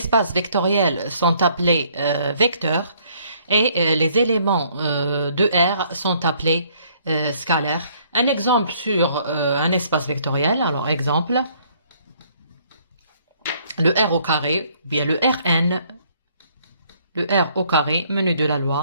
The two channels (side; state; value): both; inverted; correlation -0.64